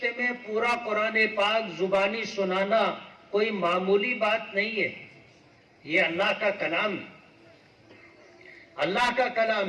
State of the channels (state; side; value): identical; both; correlation 1.00